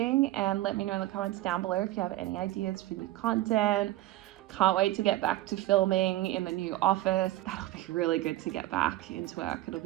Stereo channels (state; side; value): quieter; left; 16.1 dB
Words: and let me know in the comments down below if you have any ideas for new content. Can't wait to get back to filming in the new office. That'll be really good to get back into work. It'll